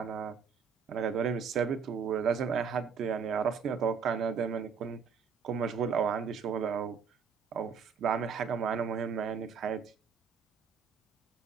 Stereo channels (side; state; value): left; quieter; 6.3 dB